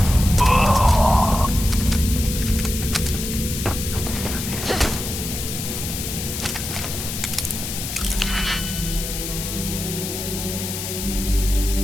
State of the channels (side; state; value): left; noise; hiss, 6 dB below the sound